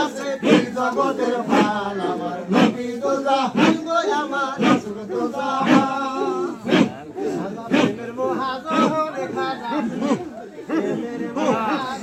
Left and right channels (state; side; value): identical; both; correlation 1.00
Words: আছে এই জগতের প্রাণ আমার নবী দোজাহান গো আমার রাসূল দোজাহান প্রেমের মহাজন খাজা প্রেমের